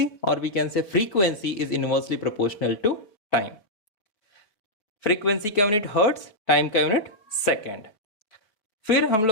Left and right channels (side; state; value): right; late; 4.8 ms